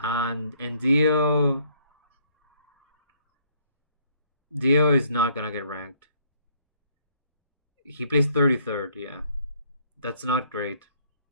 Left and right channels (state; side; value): inverted; both; correlation -0.64